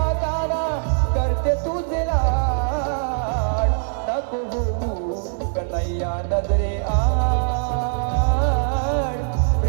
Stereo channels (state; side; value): silent; left; digital silence